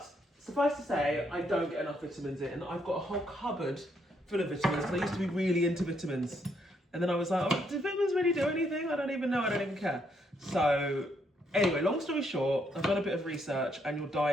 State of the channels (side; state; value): both; normal; correlation 0.74